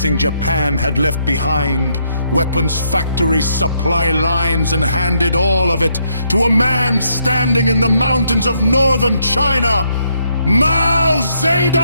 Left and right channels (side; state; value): both; inverted; correlation -0.75